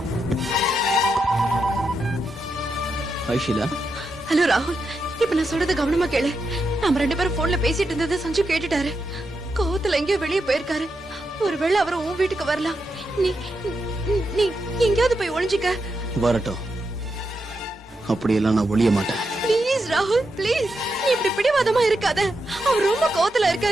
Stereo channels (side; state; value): both; normal; correlation 0.85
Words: ஹாய் ஷீலா. ஹலோ ராகுல், இப்ப நான் சொல்றத கவனமா கேளு. நம்ம 2 பேரும் போன்ல பேசிட்டு இருந்ததை சஞ்சு கேட்டுட்டாரு. கோவத்துல எங்கேயோ வெளியே போயிருக்காரு. ஒருவேளை அவர் உன் வீட்டுக்கு வரலாம். நீ நீ எங்கேயாவது போய் ஒளிஞ்சுக்க. வரட்டும், அப்படியெல்லாம் நான் ஒளிய மாட்டேன். ப்ளீஸ் ராகுல், ப்ளீஸ். நீ இப்படி பிடிவாதமா இருக்காத. அவர் ரொம்ப கோவத்துல